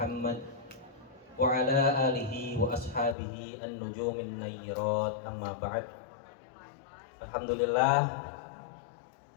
wa ala alihi wa ashabihi an-nujumin nayyirat, amma ba'd. Alhamdulillah,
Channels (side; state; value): right; drops out; at 3.2 s